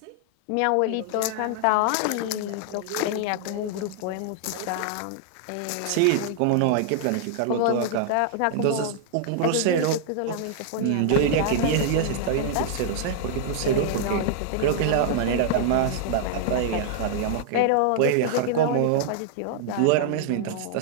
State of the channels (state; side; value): different; both; correlation -0.01